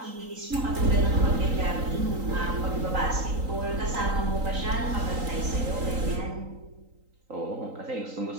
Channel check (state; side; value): late; left; 3.9 ms